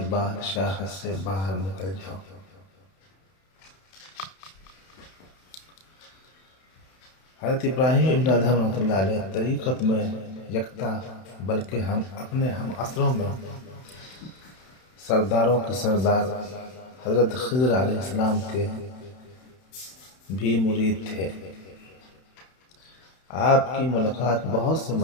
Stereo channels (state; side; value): late; right; 31 ms